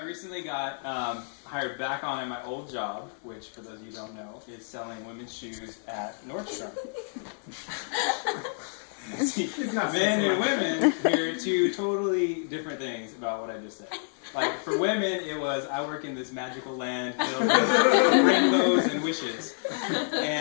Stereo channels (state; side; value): silent; right; 59 dB below the other